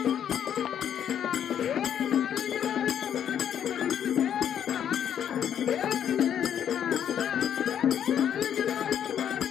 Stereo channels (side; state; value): right; quieter; 9.3 dB